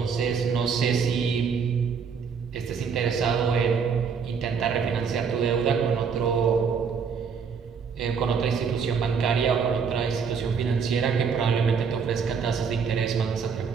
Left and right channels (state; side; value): quieter; left; 6.2 dB